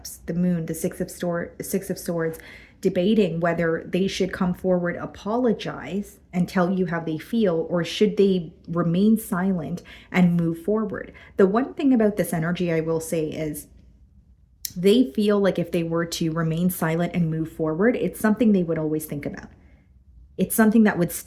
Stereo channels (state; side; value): identical; both; correlation 1.00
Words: the Moon, the Six of Swords, debating whether they should come forward, apologize, and tell you how they feel, or should they remain silent and move forward. The one thing about this energy I will say is they feel like if they were to remain silent and move forward, it's something they would always think about. It's something that would